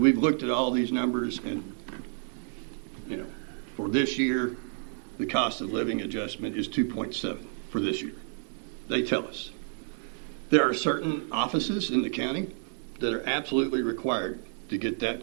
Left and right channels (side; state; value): left; silent; 58 dB below the other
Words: looked at all these numbers and, for this year, the cost of living adjustment is 2.7 for this year. They tell us. There are certain offices in the county that are absolutely required to get